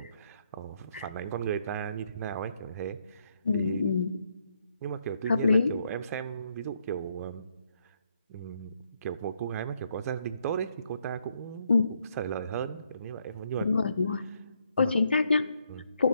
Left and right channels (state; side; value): inverted; both; correlation -0.74